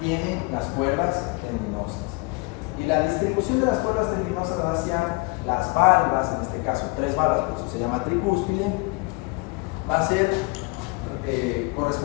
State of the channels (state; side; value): quieter; right; 27.8 dB